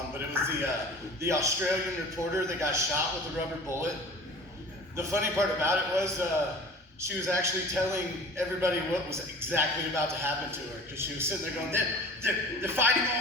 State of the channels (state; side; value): normal; both; correlation 0.42